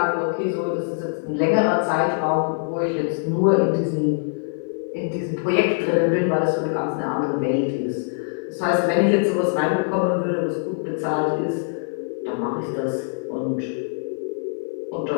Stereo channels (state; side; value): silent; right; 57 dB below the other